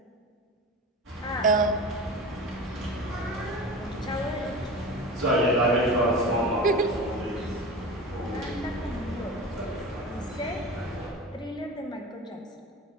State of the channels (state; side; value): normal; both; correlation 0.31